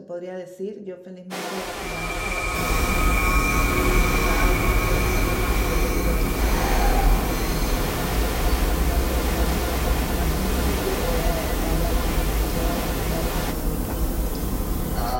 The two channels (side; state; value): both; identical; correlation 1.00